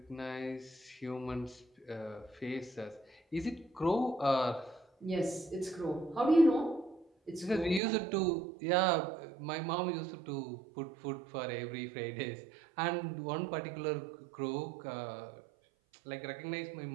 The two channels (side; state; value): left; drops out; at 7.8 s